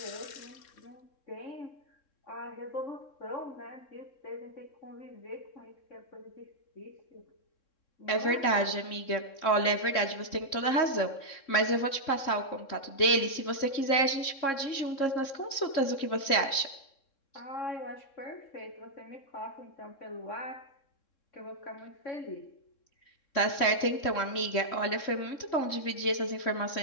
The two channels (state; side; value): late; right; 3.7 ms